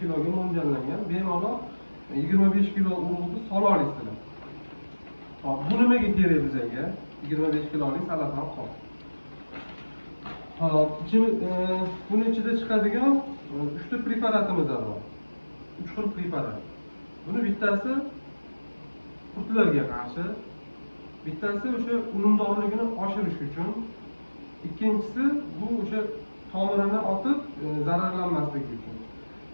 kiloga mo'ljallangan, bemalol 25 kilo urug'ni sola olasizlar. Hop, bu nimaga kerak bizga? 25 kilolik salafan qop. Hop, buni ichida chiqadigan 3 ta preparatimiz bor. 3 xil preparat. Buni bittasi qurtlarga qarshi, bittasi o'sha unumdorligini oshirish uchun, ikkinchisi bu o'sha tomirini otib zararlanmasligi uchun.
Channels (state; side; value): inverted; both; correlation -1.00